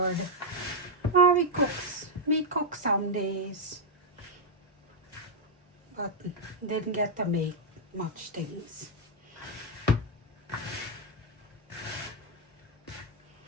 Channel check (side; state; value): both; normal; correlation -0.02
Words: Oh, we cook some days. But didn't get to make much things.